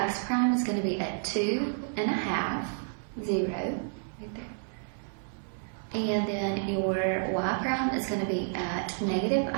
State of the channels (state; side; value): silent; left; digital silence